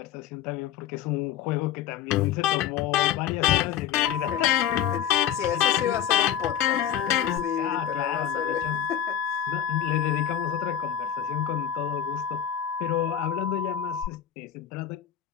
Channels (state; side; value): quieter; right; 9.9 dB